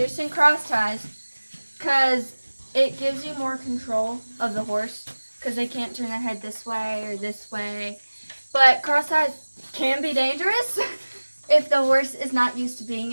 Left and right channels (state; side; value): inverted; both; correlation -1.00